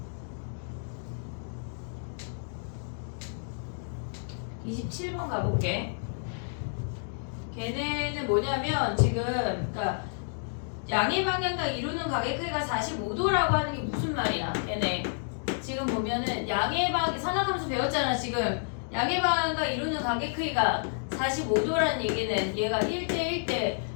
(27번) 가볼게. 걔네는 뭐냐면 지금 그러니까 양의 방향과 이루는 각의 크기가 45도라고 하는 게 무슨 말이야? 걔네 지금 보면은 양의 방 산학함수 배웠잖아. 지금 양의 방향과 이루는 각의 크기가 45도라는 얘기는 얘가 1대 1대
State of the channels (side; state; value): right; silent; digital silence